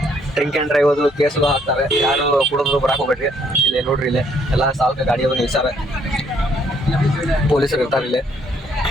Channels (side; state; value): both; normal; correlation 0.67